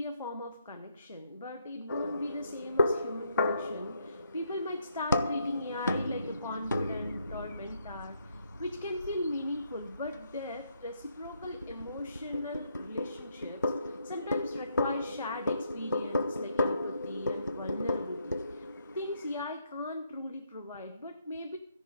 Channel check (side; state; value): both; inverted; correlation -0.75